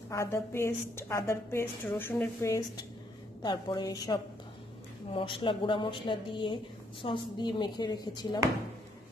আদার পেস্ট, রসুনের পেস্ট, তারপরে সব মশলা, গুঁড়া মশলা দিয়ে সস দিয়ে মেখে রেখেছিলাম।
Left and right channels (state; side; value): normal; both; correlation 0.71